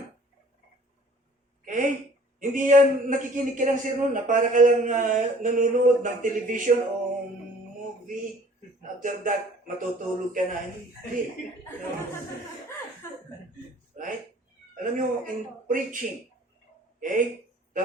Okay? Hindi yan nakikinig ka ng sermon na para ka lang nanonood ng television o movie. After that, matutulog ka na. Hindi. Right? Alam nyo, in preaching, okay?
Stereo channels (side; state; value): both; normal; correlation 0.52